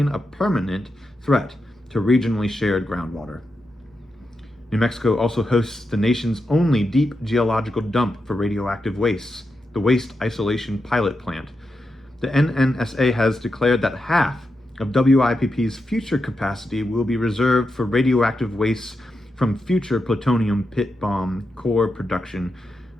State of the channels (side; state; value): both; normal; correlation 0.87